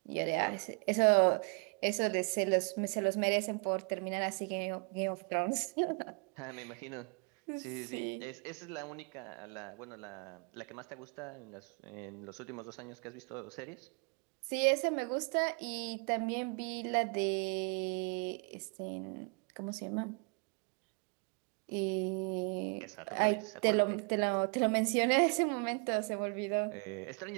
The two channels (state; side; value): quieter; left; 36.8 dB